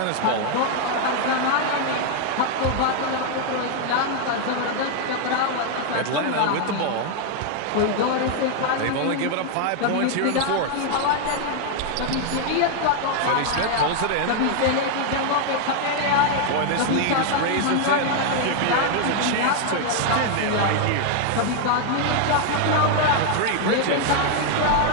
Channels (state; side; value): different; both; correlation 0.00